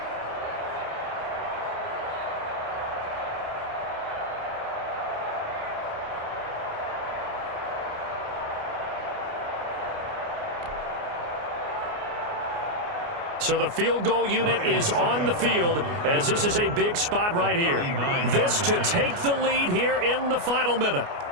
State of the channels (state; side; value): late; left; 29 ms